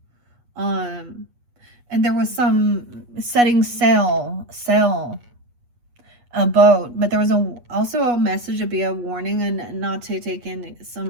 And there was some setting sail, a boat, but there was also a message to be a warning and not to take in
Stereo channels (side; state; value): left; late; 8.3 ms